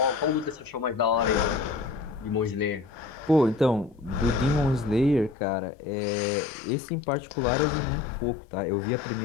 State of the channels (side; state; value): right; drops out; at 5.4 s